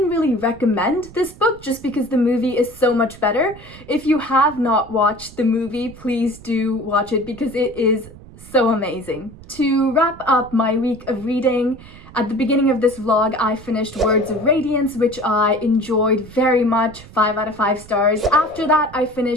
really recommend this book just because the movie is so much better. If you have not watched the movie, please do watch it because it is so amazing. To wrap up my week of reading, at the beginning of this vlog, I finished Words of Radiance, which I enjoyed very much, 5 out of 5 stars. After that, I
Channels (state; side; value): noise; right; rumble, 19 dB below the sound